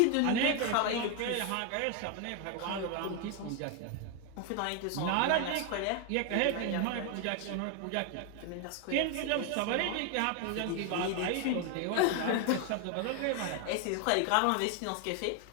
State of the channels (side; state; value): both; different; correlation 0.01